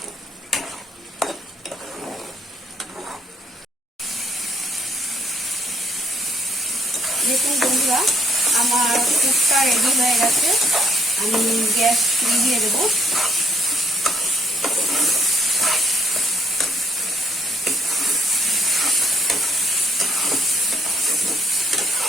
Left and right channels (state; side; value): normal; both; correlation 0.68